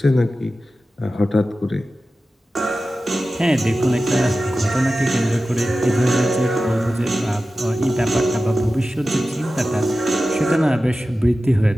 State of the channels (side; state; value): both; normal; correlation 0.94